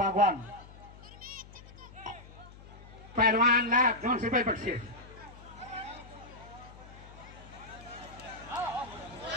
पैलवानला 200 रुपये बक्षीस.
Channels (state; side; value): noise; left; hum, 18 dB below the sound